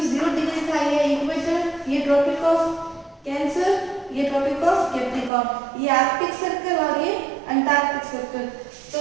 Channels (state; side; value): drops out; left; at 5.3 s